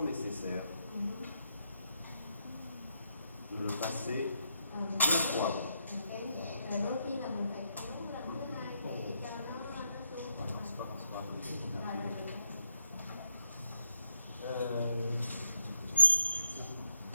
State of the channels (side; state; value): both; inverted; correlation -0.79